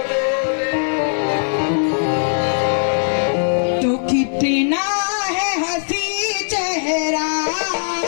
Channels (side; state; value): right; silent; 59 dB below the other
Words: तो कितना है हंसी चेहरा,